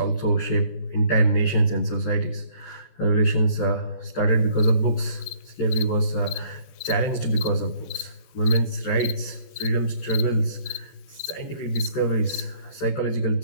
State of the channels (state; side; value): late; right; 14 ms